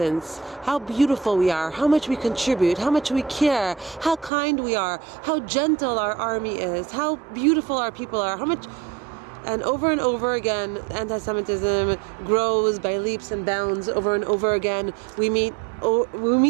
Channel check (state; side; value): drops out; left; at 4.3 s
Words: how beautiful we are, how much we contribute, how much we care, how kind we are, how gentle our army is, how beautiful our people are, how much. And over again, anti-Semitism grows by leaps and bounds. Over and over again, we meet